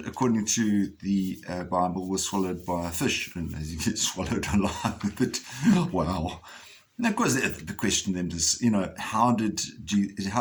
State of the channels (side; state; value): both; identical; correlation 1.00